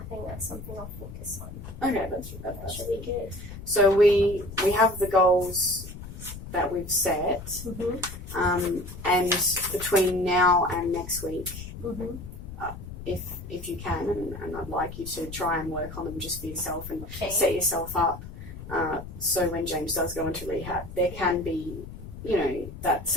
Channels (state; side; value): noise; left; rumble, 12 dB below the sound